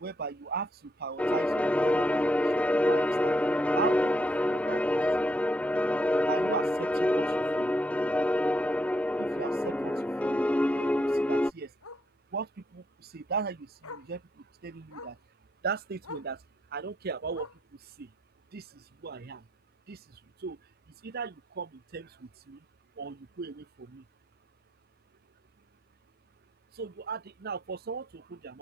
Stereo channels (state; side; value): normal; both; correlation 0.78